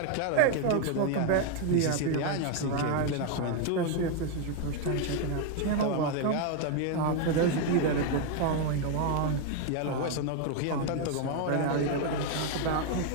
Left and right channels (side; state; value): both; different; correlation 0.01